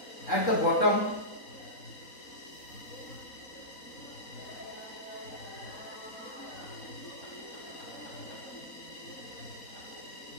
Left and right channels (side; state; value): right; late; 3.9 ms